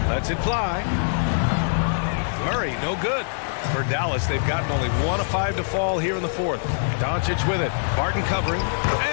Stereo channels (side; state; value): right; silent; 63 dB below the other